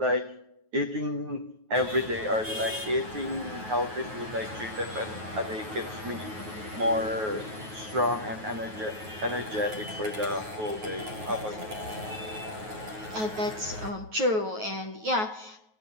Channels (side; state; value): left; late; 9.3 ms